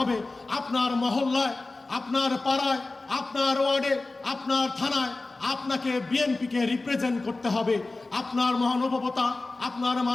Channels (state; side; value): quieter; right; 3.3 dB